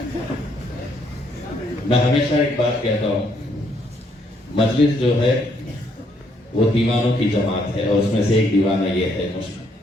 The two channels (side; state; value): both; normal; correlation 0.71